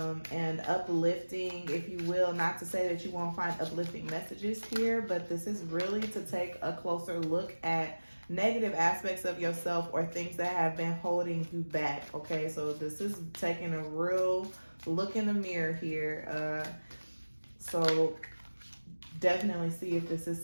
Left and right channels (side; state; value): both; inverted; correlation -1.00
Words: uplifting, if you will, not to say that you won't find uplifting messages here, but this is really to take a closer look at negative aspects of yourself or things that have been holding you back. Okay, so this is taking a real look in the mirror here. So definitely see if this is